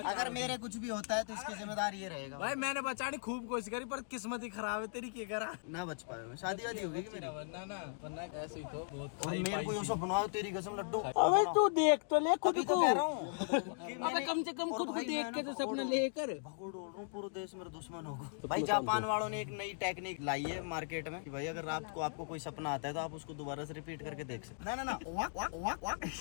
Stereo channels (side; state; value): right; silent; digital silence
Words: अगर मेरे कुछ भी होता है तो इसकी जिम्मेदारी ये रहेगा। भाई मैंने बचाने खूब कोशिश करी पर किस्मत ही खराब है तेरी। क्या करा ना बच पाए मैं। शादी वादी होगी कि मेरी? वरना ऐसे ही तो बहुत। और मेरे को ये सपना आया तेरी कसम लड्डू। अबे तू देख तो ले खुद अभी तो कह रहा हूँ कि अबे कम से कम खुद को देख के तो सपना लेकर भगोड़ रहा हूँ पूरे देश मेरे दुश्मन होगा। भाई जापान वालों ने एक नई टेक्निक लाई है मार्केट में कि भाई अगर रात को आपको कोई सपना आता है तो आप उसको दोबारा से रिपीट करके देख सकते। ना